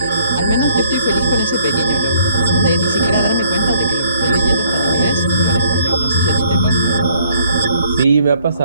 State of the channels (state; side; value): inverted; both; correlation -0.63